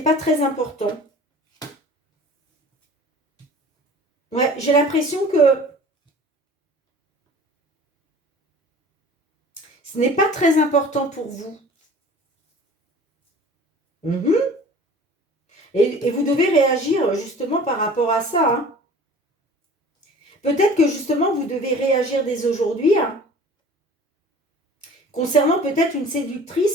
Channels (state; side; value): normal; both; correlation 0.44